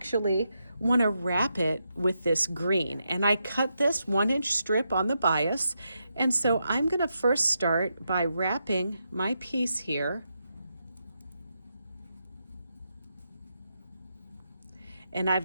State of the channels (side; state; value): both; inverted; correlation -0.84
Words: want to wrap it with this green, and I cut this 1-inch strip on the bias, and so I'm going to first start by wrapping my piece here, and